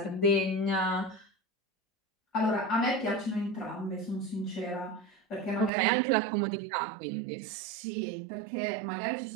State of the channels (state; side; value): drops out; left; at 5.7 s